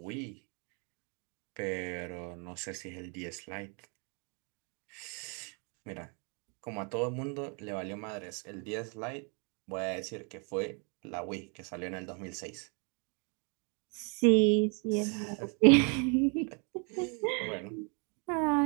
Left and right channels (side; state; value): left; quieter; 35.8 dB